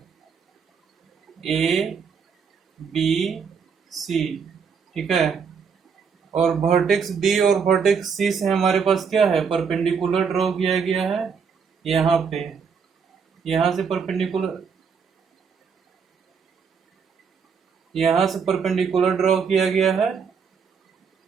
ABC। ठीक है, और वर्टेक्स B और वर्टेक्स C से हमारे पास क्या है, परपेंडिकुलर ड्रॉ किया गया है। यहाँ पे, यहाँ से परपेंडिकुलर ड्रॉ किया गया है।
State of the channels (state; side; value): quieter; left; 6.2 dB